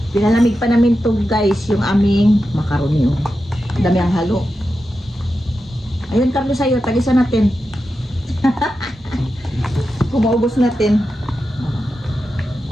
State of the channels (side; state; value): both; normal; correlation 0.90